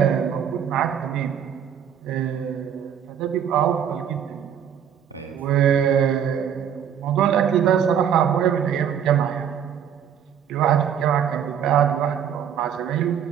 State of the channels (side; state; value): left; quieter; 8.6 dB